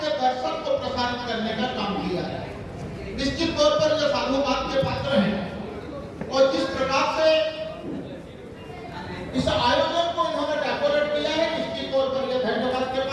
दर्शन को प्रसारित करने का काम किया है। निश्चित तौर पर ये साधुवाद के पात्र हैं और जिस प्रकार से इस आयोजन को इन्होंने डेकोरेट किया है, निश्चित तौर पर ये धन्यवाद के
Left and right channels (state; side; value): identical; both; correlation 1.00